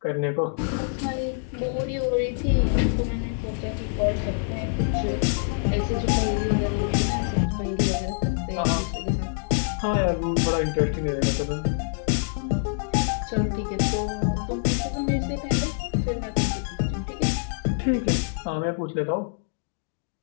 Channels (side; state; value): right; silent; digital silence